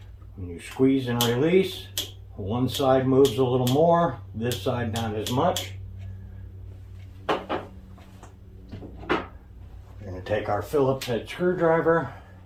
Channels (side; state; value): both; identical; correlation 1.00